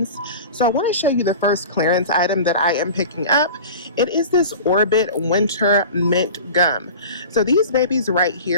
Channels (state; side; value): inverted; both; correlation -0.37